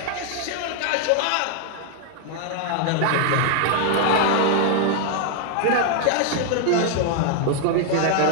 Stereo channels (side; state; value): both; different; correlation 0.00